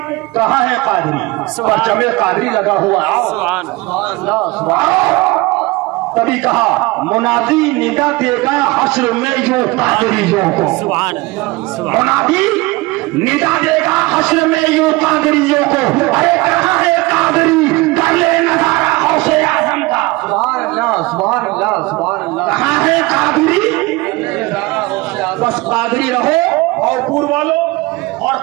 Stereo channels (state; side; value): quieter; left; 22.6 dB